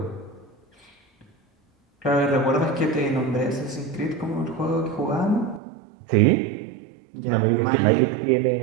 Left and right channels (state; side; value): drops out; left; at 5.6 s